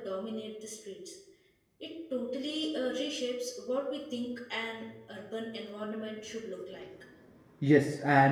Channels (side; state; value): both; identical; correlation 1.00